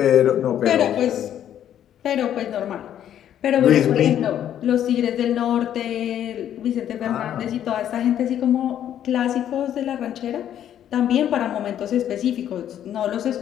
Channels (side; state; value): right; quieter; 10.5 dB